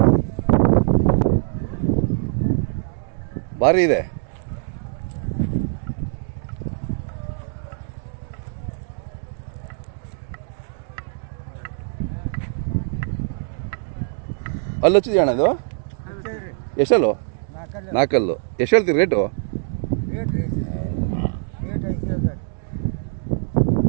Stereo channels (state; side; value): silent; left; digital silence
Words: ಭಾರಿ ಇದೆ. ಅಲ್ಲಿ ಹಚ್ಚಿದ್ಯಾ ಅಣ್ಣ ಇದು ಎಷ್ಟಲ್ಲು 4 ಅಲ್ಲು ಎಷ್ಟು ಹೇಳ್ತೀರಿ ರೇಟು?